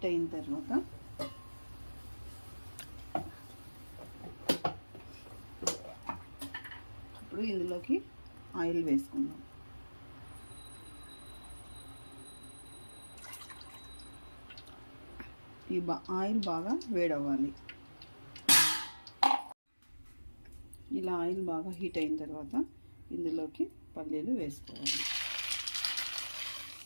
అయిన తర్వాత ఇప్పుడు ఇందులోకి ఆయిల్ వేసుకుందాం. ఈ ఆయిల్ బాగా వేడవ్వాలి. ఇలా ఆయిల్ బాగా హీట్ అయిన తర్వాత ఇందులోకి పల్లీలు వేసుకోవాలి.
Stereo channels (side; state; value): both; inverted; correlation -1.00